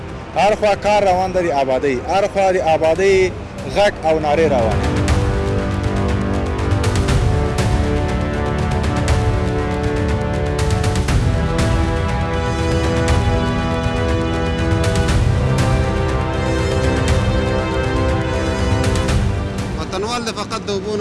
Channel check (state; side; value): identical; both; correlation 1.00